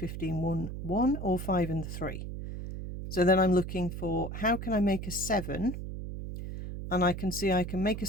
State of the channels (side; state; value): right; noise; hum, 7 dB below the sound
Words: 1 or 5 and 3. So then I'm looking for how can I make a 7, and I can see I can make a